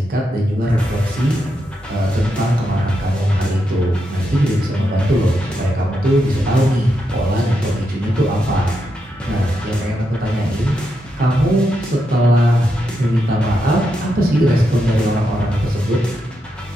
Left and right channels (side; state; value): both; normal; correlation 0.83